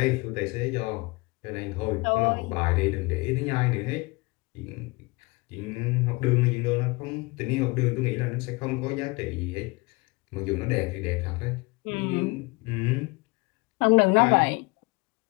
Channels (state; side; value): quieter; right; 25.8 dB